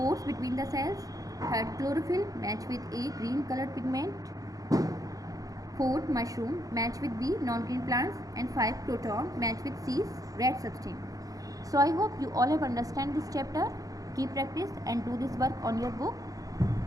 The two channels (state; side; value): late; left; 0.17 ms